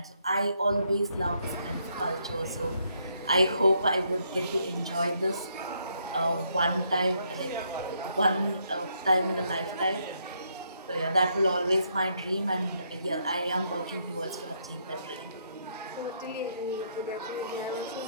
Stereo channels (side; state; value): both; inverted; correlation -0.74